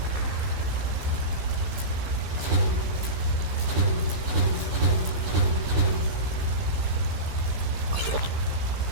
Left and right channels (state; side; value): late; left; 15 ms